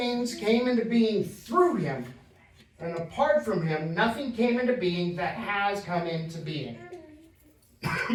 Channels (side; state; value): both; identical; correlation 1.00